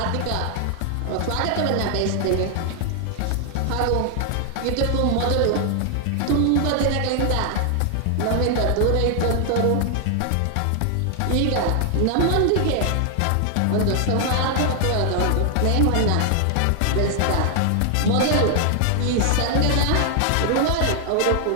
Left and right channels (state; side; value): different; both; correlation 0.00